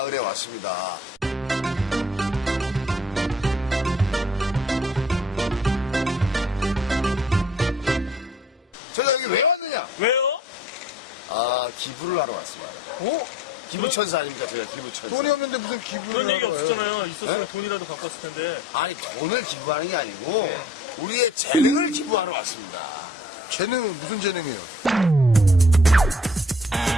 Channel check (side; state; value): both; normal; correlation 0.52